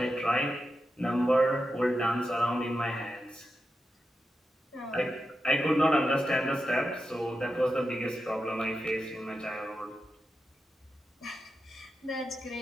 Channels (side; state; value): both; normal; correlation 0.89